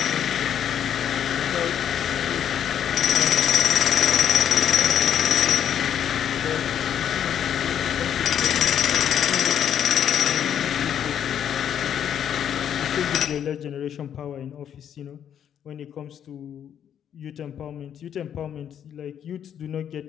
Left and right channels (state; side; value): quieter; right; 9.3 dB